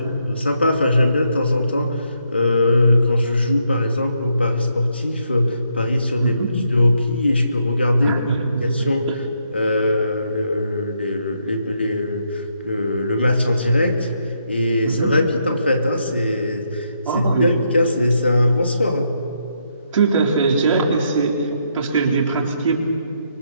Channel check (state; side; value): inverted; both; correlation -0.77